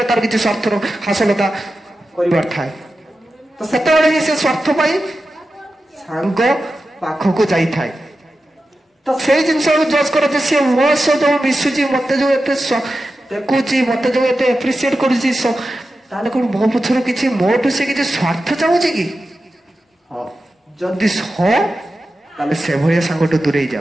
ତାର କିଛି ସ୍ୱାର୍ଥର ହାସଲତା କରିବାର ଥାଏ। ତ ସେତେବେଳେ ହିଁ ସେ ସ୍ୱାର୍ଥ ପାଇଁ ସାଙ୍ଗ ପାଖକୁ ଯାଇଥାଏ। ତ ସେଇ ଜିନିଷକୁ ଜଜ୍ କର ଯେ ସିଏ ମୋ ସହ ଯୋଉ ମିଶୁଛି, ମତେ ଯୋଉ ଏତେ ଦେଖୁଛି, ମତେ ଯୋଉ ଏତେ ଆପ୍ରିସିଏଟ କରୁଛି, ତାହେଲେ କଣ ମୋ ପଛରୁ କିଛି ମୋଠୁ ସେ କିଛି ସ୍ୱାର୍ଥ ଚାହୁଁଛି କି? ହଁ, ଯଦି ହଁ ତାହେଲେ ସେଭଳିଆ ସାଙ୍ଗଠୁ ଦୂରେଇ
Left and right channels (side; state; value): both; normal; correlation 0.92